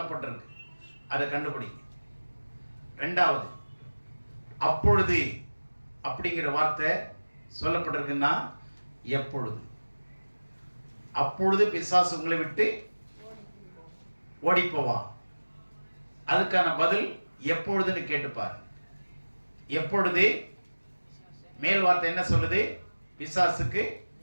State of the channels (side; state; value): both; inverted; correlation -1.00